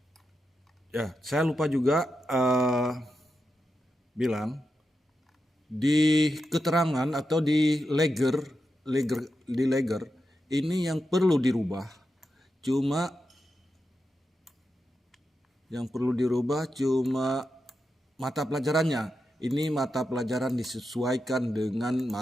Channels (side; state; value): both; normal; correlation 0.88